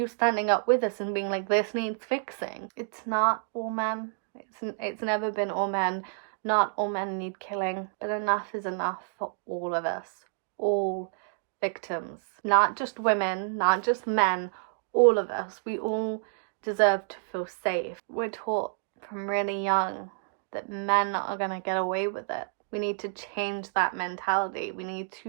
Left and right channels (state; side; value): silent; left; digital silence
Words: standing up with us and being like, this needs fixing? It's not all men. It's never been all men, Not all men need killing, but enough is enough for all of us. All victims. Not just women, not just men, all of us. We all deserve to feel safe. We're taught from really young that men are gonna get away with it. We need to change that mentality. We need